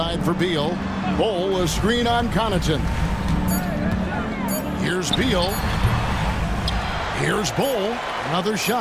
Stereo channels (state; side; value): identical; both; correlation 1.00